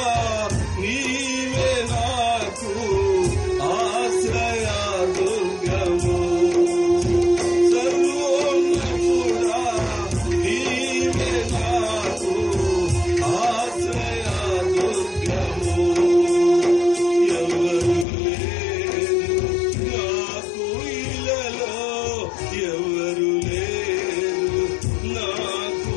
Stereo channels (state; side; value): drops out; right; at 18.1 s